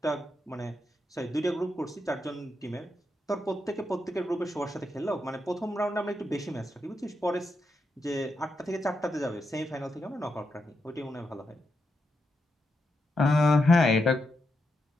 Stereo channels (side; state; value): both; normal; correlation 0.84